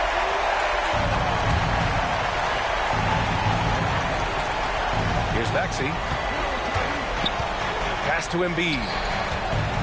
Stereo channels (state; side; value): identical; both; correlation 1.00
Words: Here's Maxey. Pass to Embiid.